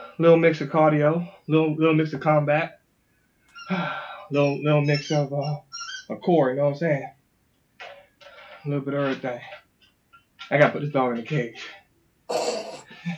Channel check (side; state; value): both; identical; correlation 1.00